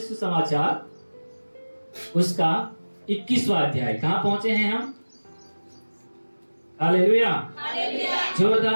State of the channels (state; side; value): inverted; both; correlation -1.00